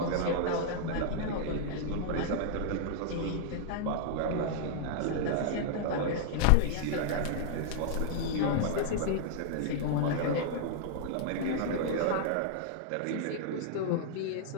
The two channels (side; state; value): both; different; correlation -0.01